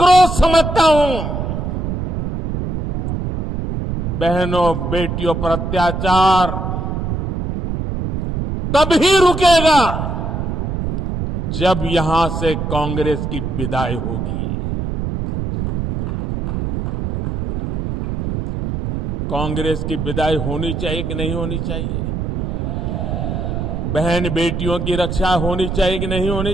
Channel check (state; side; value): noise; right; rumble, 3 dB below the sound